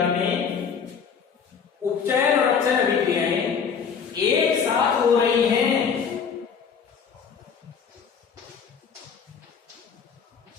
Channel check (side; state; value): right; quieter; 6.6 dB